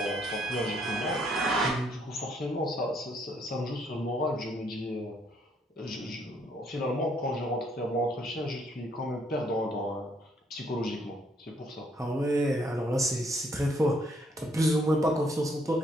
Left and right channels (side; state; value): both; normal; correlation 0.69